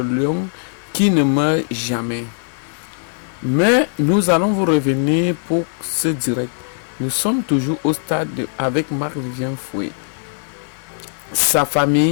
lion qui ne meurt jamais. Mais nous allons vous revenir pour ce direct. Nous sommes toujours au stade avec Marc-Vivien Foé. Sa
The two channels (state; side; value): silent; right; 59 dB below the other